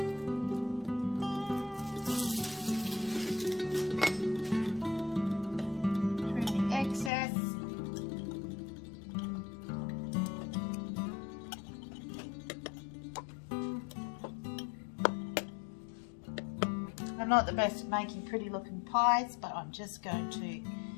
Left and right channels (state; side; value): drops out; right; at 7.1 s